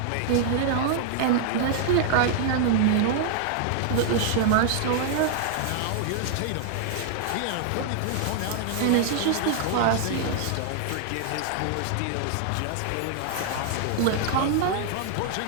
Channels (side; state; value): both; different; correlation 0.00